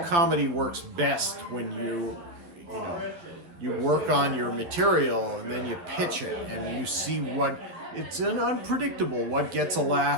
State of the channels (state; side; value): late; left; 11 ms